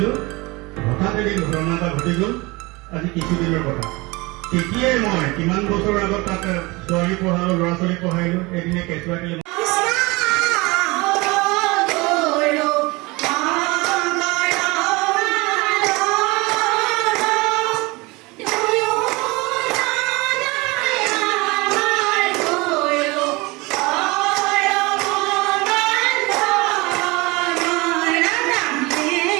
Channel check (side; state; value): left; quieter; 24.0 dB